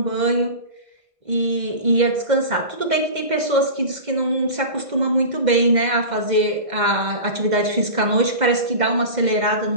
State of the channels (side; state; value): left; late; 2.1 ms